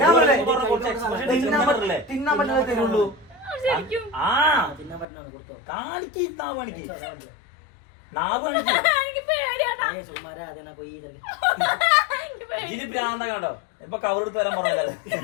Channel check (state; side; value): drops out; right; at 5.1 s